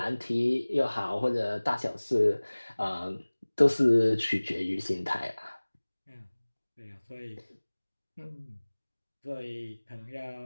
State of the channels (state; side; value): inverted; both; correlation -1.00